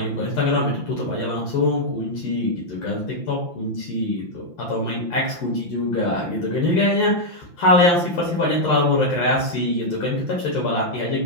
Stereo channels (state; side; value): late; right; 5.9 ms